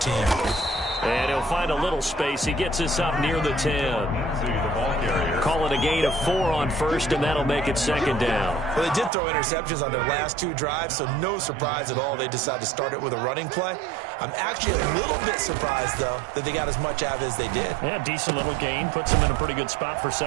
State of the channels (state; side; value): drops out; left; at 9.1 s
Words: And he'll find a little space. He gets us up near the 10. Call it a gain of 4 on first, and that'll make it 2nd down. Well, they did throw interceptions on their last 2 drives, so no surprise at all they decided to start it with a running play. I'm actually a little bit surprised, though, that they got as much out of it as they did. Yeah, decent little gain. Puts them in a pretty good spot for